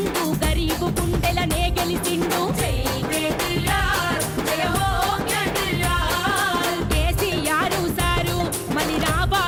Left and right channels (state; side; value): identical; both; correlation 1.00